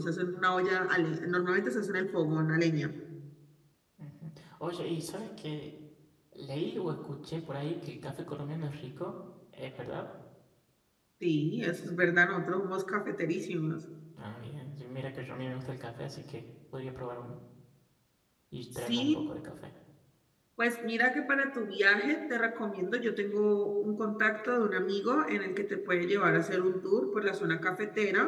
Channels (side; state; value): both; identical; correlation 1.00